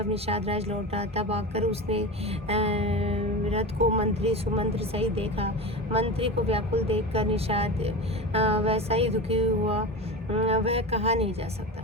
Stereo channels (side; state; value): both; normal; correlation 0.26